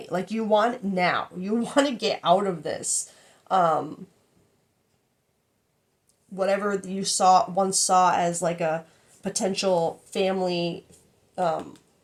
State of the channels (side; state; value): both; identical; correlation 1.00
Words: Like you want it now. You want to get out of this. Whatever you once saw as like a potential family,